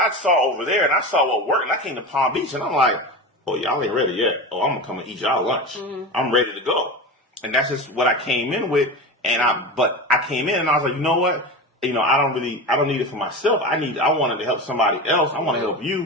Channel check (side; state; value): both; normal; correlation 0.26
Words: saw over there and I saw what worked. And I came to Palm Beach and I'm like, oh, y'all ain't ready yet. Oh, I'm going to come and eat y'all lunch. I'm ready to go. And that's just what I came in with. But I came in and I was like, you know what? I don't need it for myself. I wanted to help somebody else. I want to help